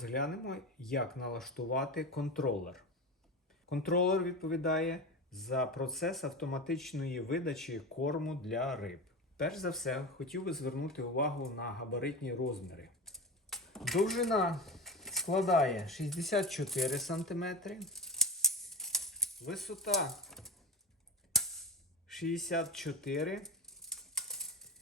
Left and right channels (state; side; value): normal; both; correlation 0.25